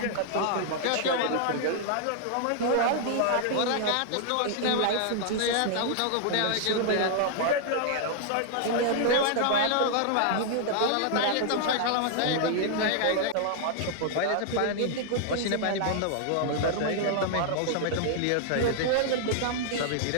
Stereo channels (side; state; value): both; different; correlation -0.01